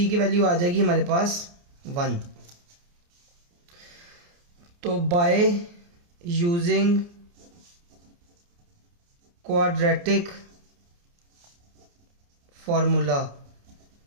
की वैल्यू आ जाएगी हमारे पास 1। तो by using quadratic formula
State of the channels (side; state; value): left; late; 29 ms